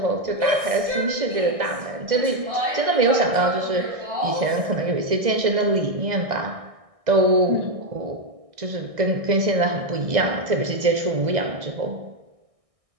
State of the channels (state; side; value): late; left; 1.6 ms